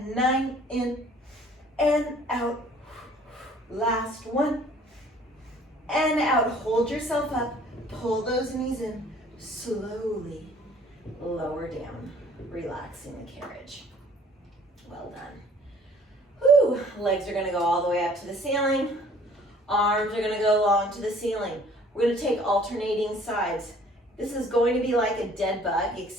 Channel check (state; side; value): normal; both; correlation 0.54